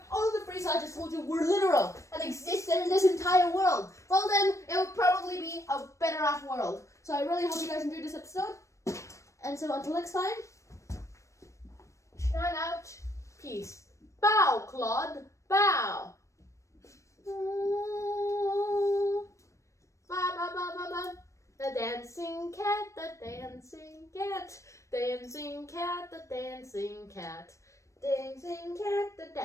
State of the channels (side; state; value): right; late; 0.15 ms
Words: all the phrases I just told you were literal and existed in this entire world? Well then, it would probably be a better off world. So I really hope you guys enjoyed this episode. And so until next time, shine out, peace. Bow, Claude, bow. Ba ba ba ba ba. The dancing cat, the dancing cat, dancing cat, the dancing cat, dancing cat, the